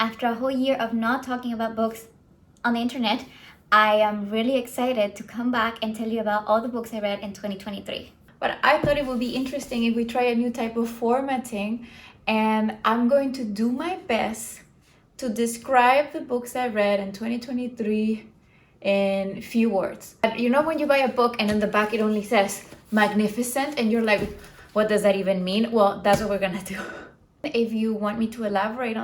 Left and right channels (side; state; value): both; identical; correlation 1.00